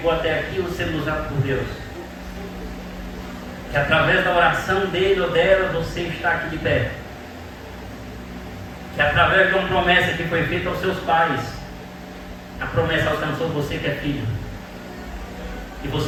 até aqui ou sendo usado por Deus, que através da oração dele ou dela você está aqui de pé, que através de uma promessa que foi feita aos seus pais, a promessa alcançou você que é filho, e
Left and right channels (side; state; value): both; identical; correlation 1.00